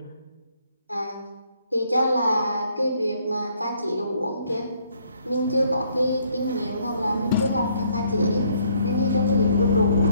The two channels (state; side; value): inverted; both; correlation -0.67